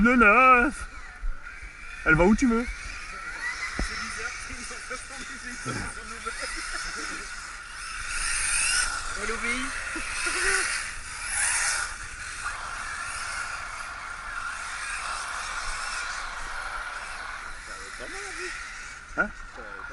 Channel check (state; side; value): identical; both; correlation 1.00